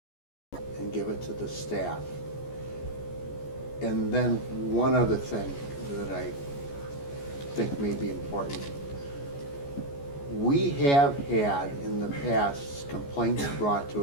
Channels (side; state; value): right; late; 14 ms